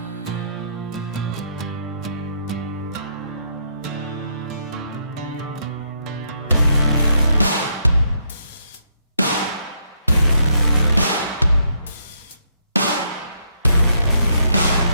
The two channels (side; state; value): both; inverted; correlation -0.75